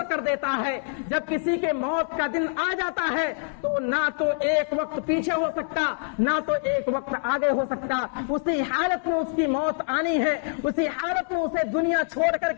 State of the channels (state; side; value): silent; right; digital silence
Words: کر دیتا ہے، جب کسی کے موت کا دن آ جاتا ہے تو نہ تو ایک وقت پیچھے ہو سکتا، نہ تو ایک وقت آگے ہو سکتا، اسی حالت میں اس کی موت آنی ہے، اسی حالت میں اسے دنیا چھوڑ کر